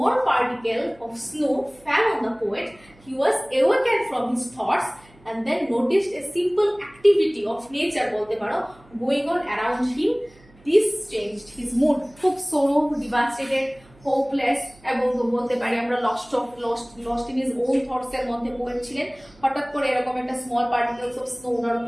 particle of snow fell on the poet, he was awakened from his thoughts and then noticed a simple activity of nature বলতে পারো going on around him. This changed his mood. খুব sorrow, devastated, hopeless এবং বলতে পারি আমরা lost in his own thoughts এর মধ্যে poet ছিলেন। হঠাৎ করে এরকম একটা স্মল পার্টিকেলস অফ স্নো ওনার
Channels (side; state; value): right; noise; hum, 27 dB below the sound